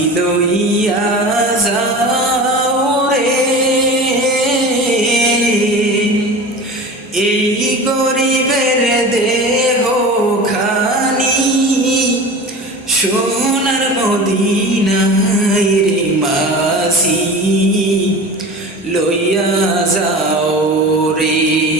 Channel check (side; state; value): both; normal; correlation 0.34